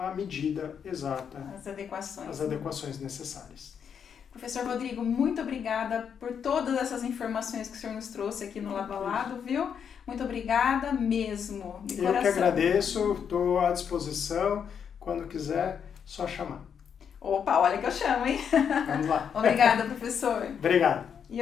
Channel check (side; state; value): right; quieter; 7.5 dB